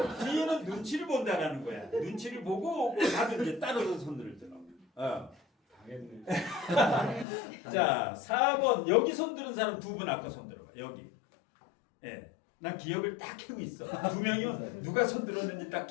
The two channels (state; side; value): drops out; right; at 7.2 s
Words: 뒤에는 눈치를 본다라는 거야. 눈치를 보고 나도 이제 따로서 손들더라고. 당했네. 자, 4번 여기 손드는 사람 두 분 아까 손들어봐. 여기. 예. 난 기억을 딱 해고 있어. 두 명이면 누가 손들었는지 딱